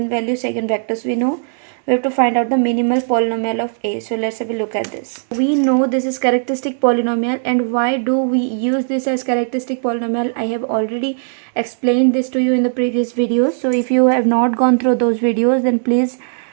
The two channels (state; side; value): silent; left; digital silence